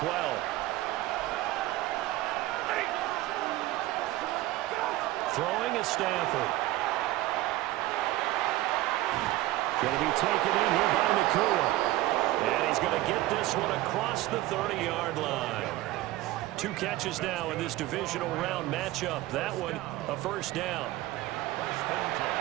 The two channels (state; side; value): quieter; left; 16.8 dB